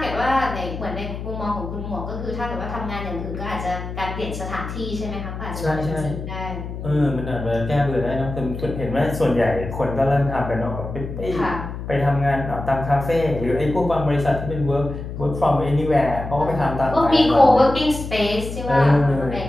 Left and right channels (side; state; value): left; noise; hum, 8 dB below the sound